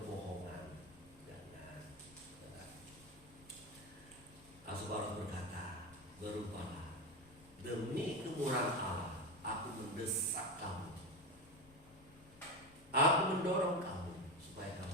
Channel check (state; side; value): noise; left; rumble, 23 dB below the sound